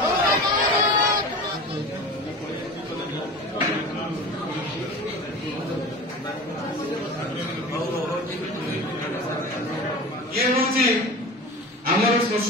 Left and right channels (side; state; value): both; normal; correlation 0.34